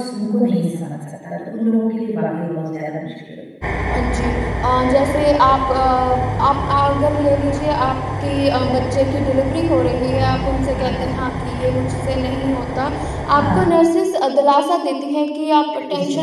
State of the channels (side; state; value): both; identical; correlation 1.00